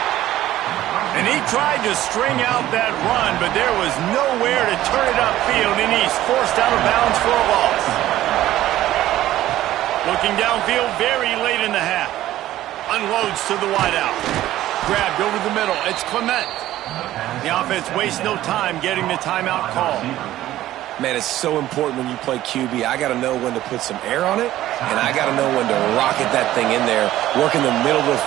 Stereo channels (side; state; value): left; quieter; 14.2 dB